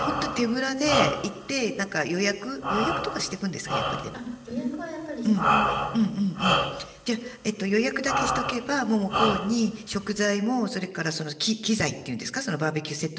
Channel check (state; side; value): identical; both; correlation 1.00